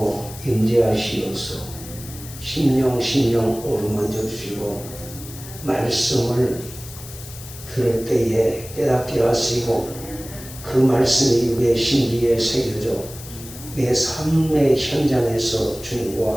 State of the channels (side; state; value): left; noise; hiss, 15 dB below the sound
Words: 임재하시어서 심령 어루만져 주시고 말씀을 들을 때에 깨닫게 하시고 그 말씀이 우리의 심기에 새겨져 내 삶의 현장에서